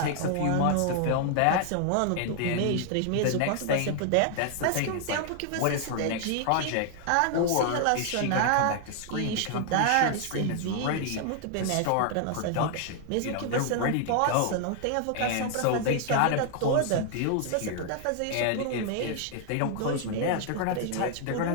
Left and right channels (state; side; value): different; both; correlation 0.00